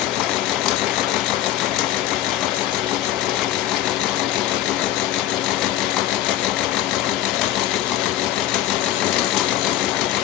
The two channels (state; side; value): quieter; right; 13.3 dB